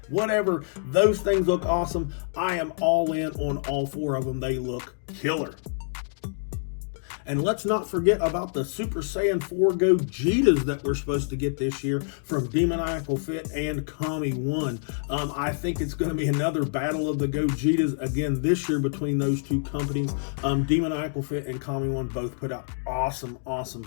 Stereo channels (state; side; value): silent; right; digital silence